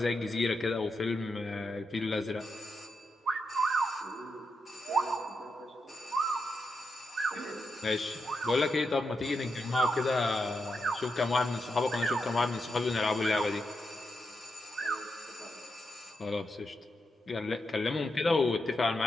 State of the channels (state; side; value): normal; both; correlation 0.85